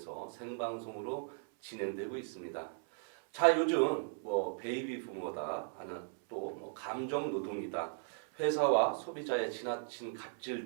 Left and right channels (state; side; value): silent; left; 53 dB below the other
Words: 생방송으로 진행되고 있습니다. 자, 요즘 베이비 부모다 하는 또 감정 노동이다, 회사와 소비자의 지나친 갑질